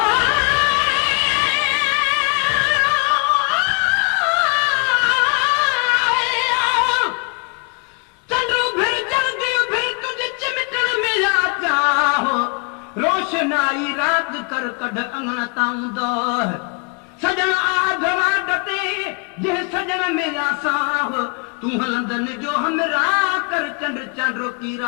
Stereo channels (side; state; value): right; quieter; 34.3 dB